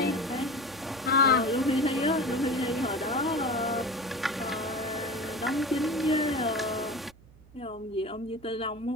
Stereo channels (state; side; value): noise; right; hum, 24 dB below the sound